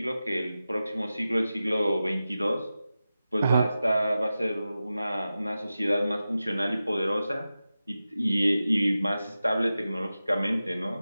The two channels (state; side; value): inverted; both; correlation -0.93